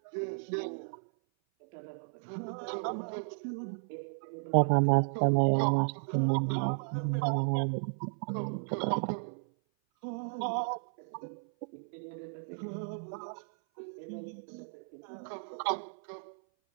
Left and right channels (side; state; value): left; silent; 55 dB below the other